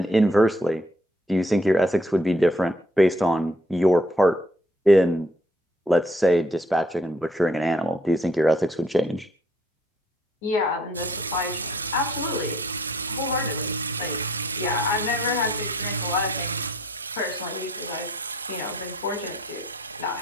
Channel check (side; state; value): both; normal; correlation 0.65